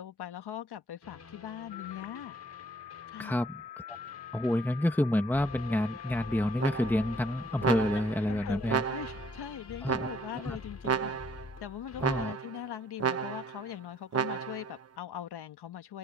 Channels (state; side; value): normal; both; correlation 0.63